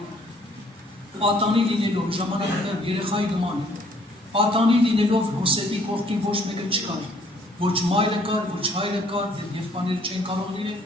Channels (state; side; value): normal; both; correlation 0.62